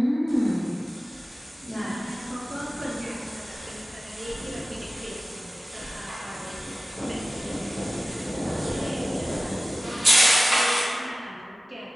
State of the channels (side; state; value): both; normal; correlation 0.96